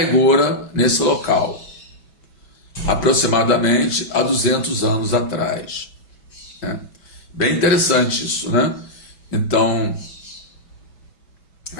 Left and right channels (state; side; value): late; right; 6.1 ms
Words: Gora nesse local, aproximadamente há 200 anos atrás. Bem interessante isso, né? Então,